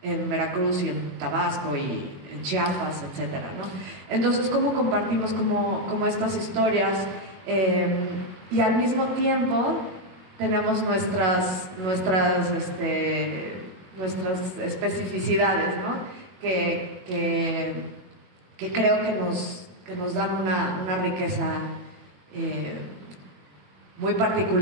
en Veracruz y en Tabasco y en Chiapas, etcétera, ¿no? Entonces, ¿cómo compartimos como estas historias? Y al mismo tiempo tenemos nuestras especificidades, ¿no? Que creo que nos dan una riqueza muy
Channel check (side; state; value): left; late; 21 ms